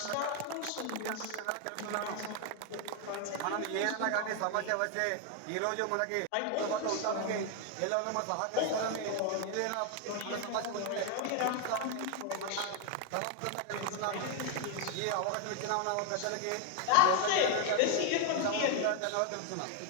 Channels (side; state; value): both; different; correlation 0.01